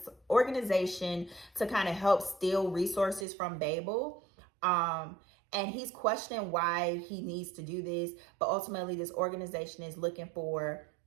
organization to kind of help steal resources from Babel. And he's questioning why he needs to do this. But ultimately, this organization is looking for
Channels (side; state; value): left; drops out; at 3.2 s